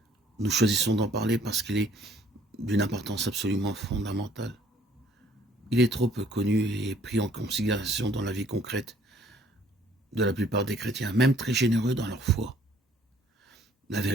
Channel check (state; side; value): normal; both; correlation 0.60